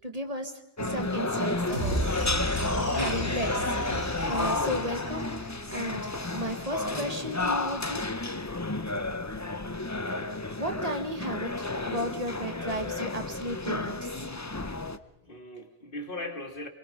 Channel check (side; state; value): both; normal; correlation -0.06